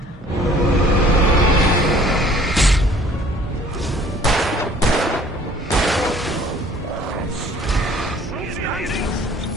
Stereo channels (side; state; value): both; normal; correlation 0.54